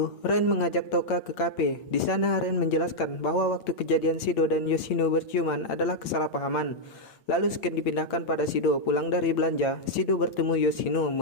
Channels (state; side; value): late; right; 8.8 ms